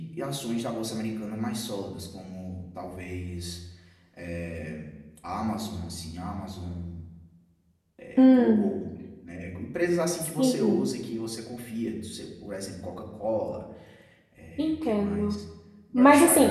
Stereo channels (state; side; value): identical; both; correlation 1.00